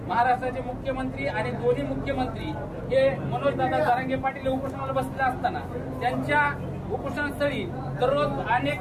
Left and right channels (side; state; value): both; identical; correlation 1.00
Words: महाराष्ट्राचे मुख्यमंत्री आणि दोन्ही मुख्यमंत्री हे मनोजदादा जरांगे पाटील उपोषणाला बसले असताना त्यांच्या उपोषणस्थळी दररोज अनेक